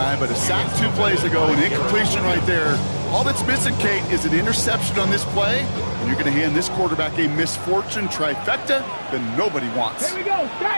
but a sack 2 plays ago, an incompletion right there. All that's missing, Kate, is an interception on this play, and you're going to hand this quarterback a misfortune trifecta that nobody wants. Here we go,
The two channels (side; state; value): both; inverted; correlation -1.00